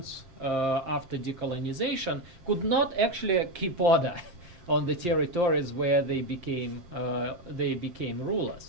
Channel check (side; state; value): left; late; 7.5 ms